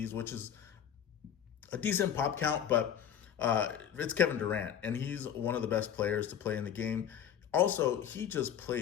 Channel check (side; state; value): right; quieter; 9.0 dB